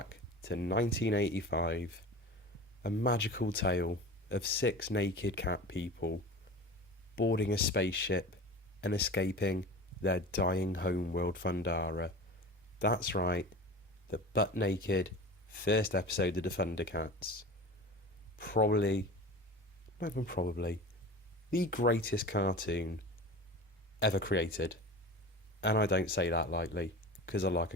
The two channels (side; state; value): both; normal; correlation 0.35